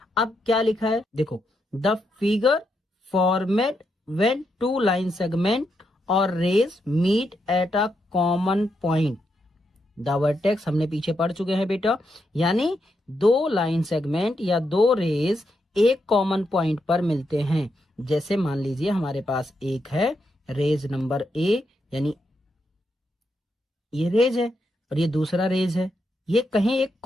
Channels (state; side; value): normal; both; correlation 0.82